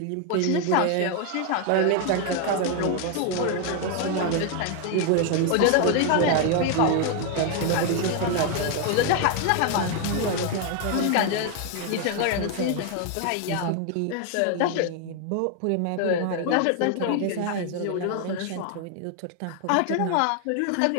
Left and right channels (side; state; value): both; different; correlation 0.01